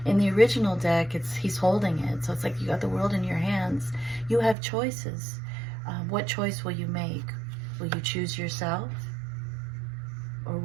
In the original deck, he's holding it, so it's like you got the world in your hands. You have choices. What choice will you make? Will you choose yourself? Or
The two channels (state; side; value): drops out; left; at 4.5 s